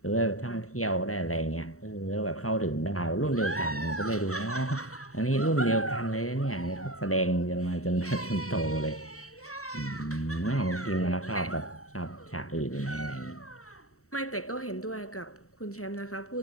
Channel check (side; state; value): right; late; 0.64 ms